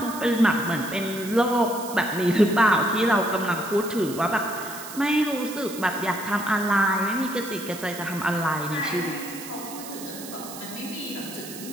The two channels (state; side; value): noise; right; hiss, 12 dB below the sound